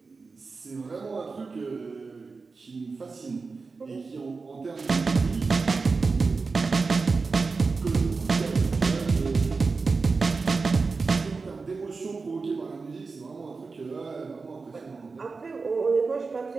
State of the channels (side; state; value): left; quieter; 4.3 dB